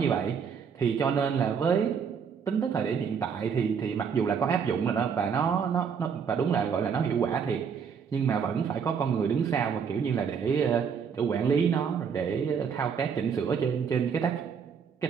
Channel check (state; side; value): quieter; left; 6.7 dB